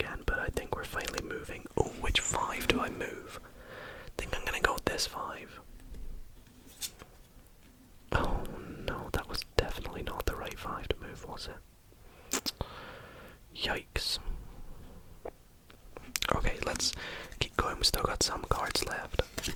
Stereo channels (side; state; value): both; identical; correlation 1.00